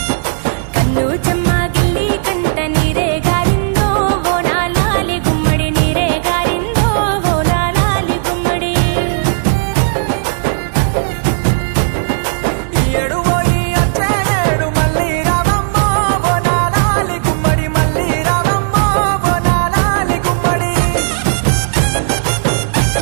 కన్ను చెమ్మ గిల్లి కంట నీరే గారిందో ఓనాలాలి గుమ్మడి నీరే గారిందో ఓనాలాలి గుమ్మడి ఈ ఏడు పోయి వచ్చే ఏడు మళ్ళీ రావమ్మో బోనాలాలి గుమ్మడి మళ్ళీ రావమ్మో బోనాలాలి గుమ్మడి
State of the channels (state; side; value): silent; left; digital silence